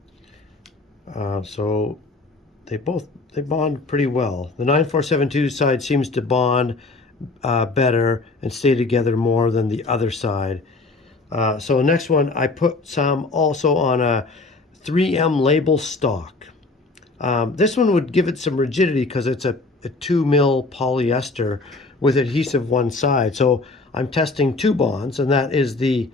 So they bond pretty well. The 9472 side seems to bond better and stay together more than the other side. So the next one, I put some also on a 3M label stock. This one would give it some rigidity because it's a 2 mil polyester with adhesive one side. So I'm testing 2 bonds, and that is the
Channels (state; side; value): quieter; right; 3.5 dB